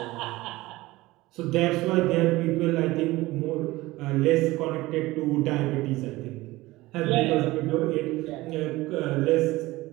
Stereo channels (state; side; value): quieter; left; 19.2 dB